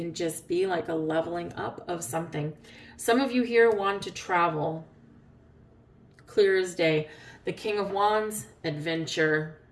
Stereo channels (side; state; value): both; identical; correlation 1.00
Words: just be like a leveling up of something. Some of you here want to travel. Clear as day. The King of Wands, adventure,